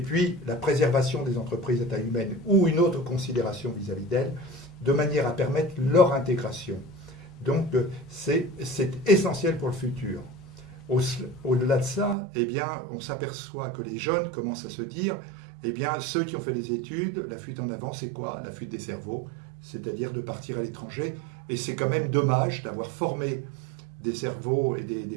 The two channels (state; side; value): drops out; left; at 12.2 s